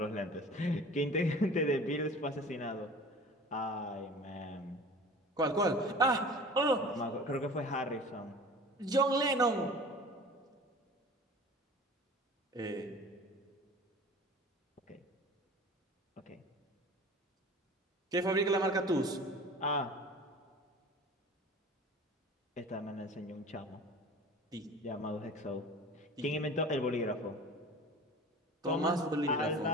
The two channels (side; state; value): both; normal; correlation 0.40